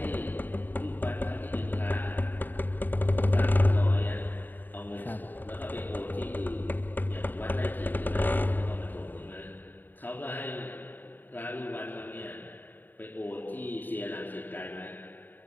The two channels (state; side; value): late; right; 0.090 ms